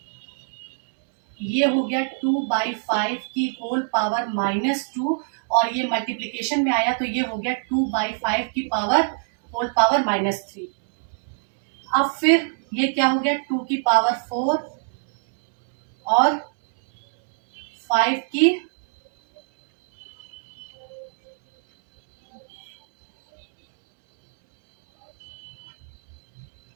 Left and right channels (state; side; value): silent; left; digital silence